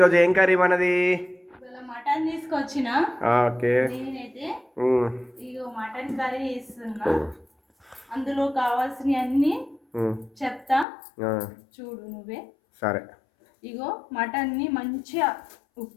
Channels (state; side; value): drops out; right; at 10.9 s